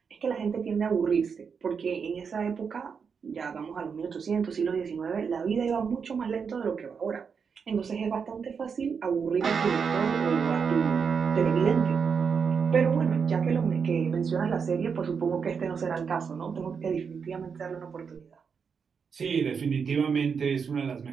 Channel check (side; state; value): left; quieter; 6.1 dB